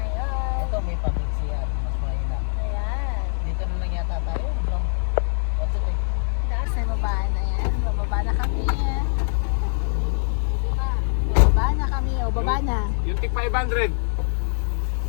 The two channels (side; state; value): right; silent; 62 dB below the other